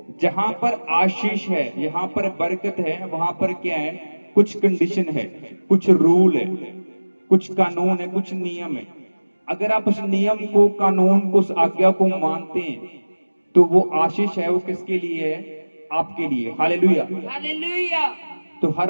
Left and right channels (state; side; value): inverted; both; correlation -1.00